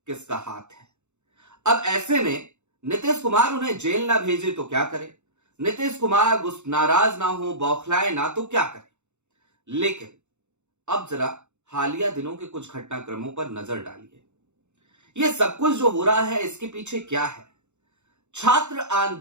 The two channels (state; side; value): late; left; 0.83 ms